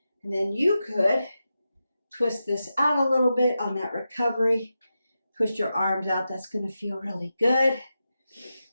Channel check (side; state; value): both; inverted; correlation -0.90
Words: And then you could twist this out a little bit on that recovery. Push your arms out. That's going to feel really good.